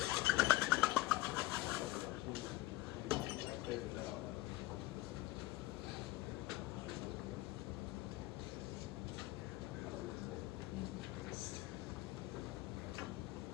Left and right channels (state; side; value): quieter; right; 18.7 dB